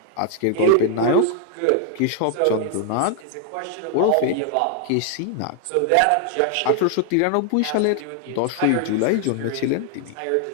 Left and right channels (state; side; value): different; both; correlation 0.00